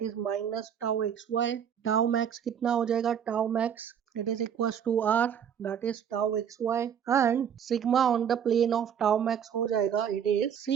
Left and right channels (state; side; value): quieter; left; 8.3 dB